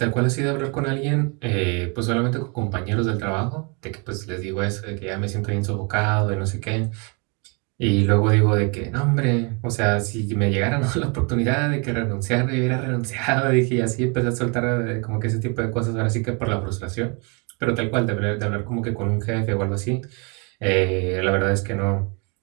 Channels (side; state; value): left; quieter; 33.3 dB